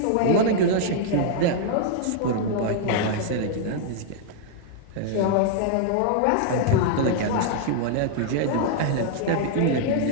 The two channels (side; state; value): both; different; correlation -0.01